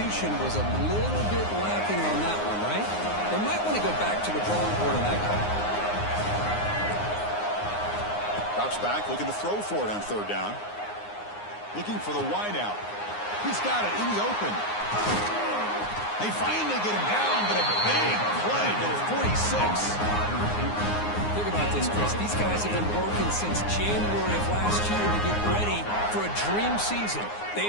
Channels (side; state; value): right; late; 9.6 ms